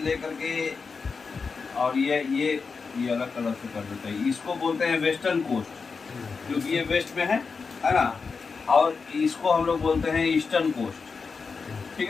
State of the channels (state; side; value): quieter; right; 5.0 dB